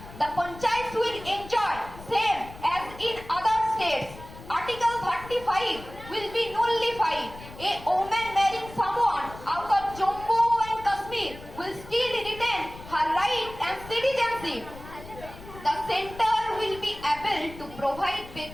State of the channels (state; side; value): noise; left; rumble, 16 dB below the sound